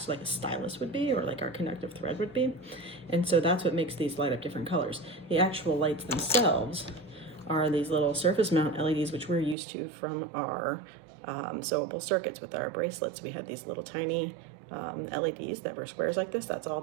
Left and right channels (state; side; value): drops out; left; at 9.6 s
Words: so like a stylus would be, or like our conductive thread would be. And so that's what makes these light up different colors. The actual lights themselves are these little surface mount LEDs, which we're used to from our sewable circuits with our bracelets. We have these little tiny LEDs that were squares like this. That's all